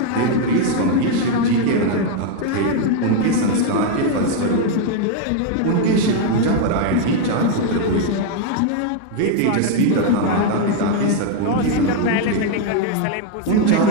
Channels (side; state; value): both; different; correlation 0.00